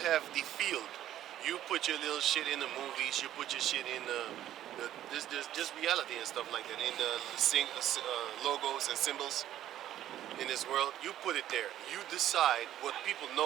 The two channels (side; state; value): left; quieter; 12.3 dB